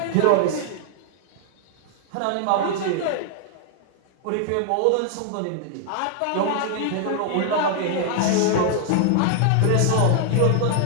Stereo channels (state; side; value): different; both; correlation -0.01